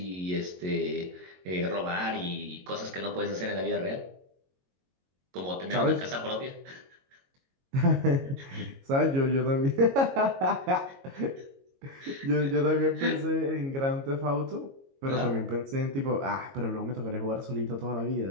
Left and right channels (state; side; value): late; left; 22 ms